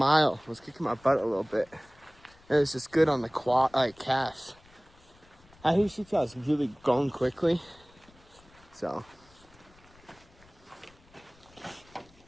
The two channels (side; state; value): left; noise; rumble, 27 dB below the sound